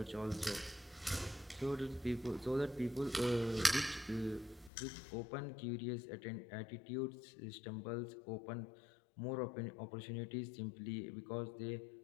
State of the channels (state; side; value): drops out; right; at 4.7 s